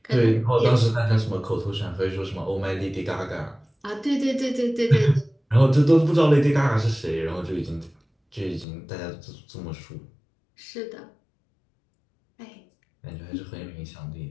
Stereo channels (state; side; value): drops out; right; at 8.7 s